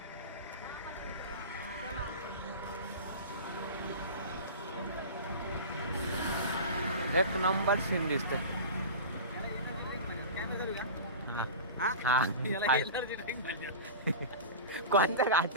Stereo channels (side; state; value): both; inverted; correlation -0.31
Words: एक नंबर सीन दिसते. कोणता